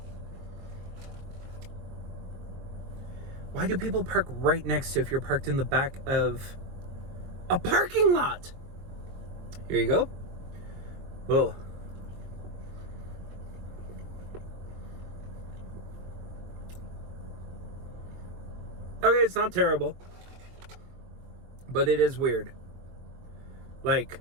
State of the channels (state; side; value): late; left; 23 ms